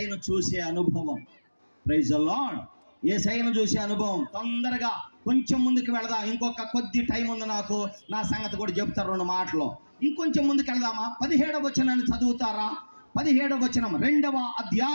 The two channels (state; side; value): inverted; both; correlation -1.00